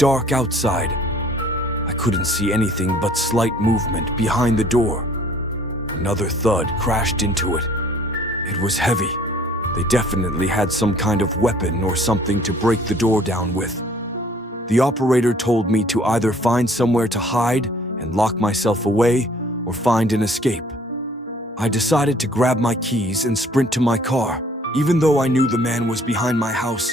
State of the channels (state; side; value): normal; both; correlation 0.56